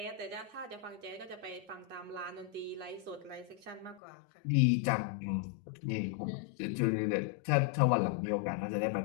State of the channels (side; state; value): right; drops out; at 4.0 s